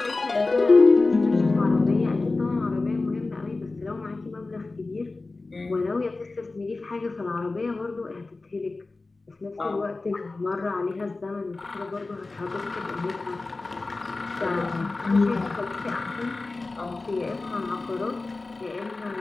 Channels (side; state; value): right; quieter; 3.4 dB